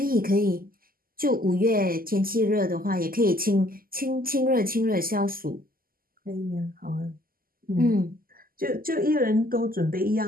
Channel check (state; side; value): late; left; 0.42 ms